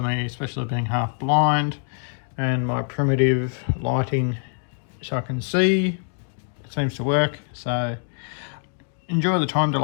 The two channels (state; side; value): silent; right; 58 dB below the other